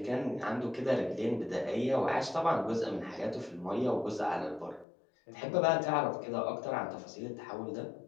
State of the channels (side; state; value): right; drops out; at 4.9 s